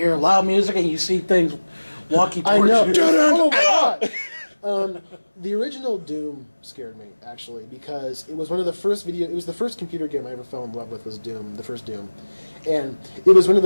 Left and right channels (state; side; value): inverted; both; correlation -1.00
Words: loud music and you see things walking towards you. Oh my god! The original Doom scared me actually because it was one of the first It was the first computer game I ever fell in love with. Was Doom, the first Doom, and it was one of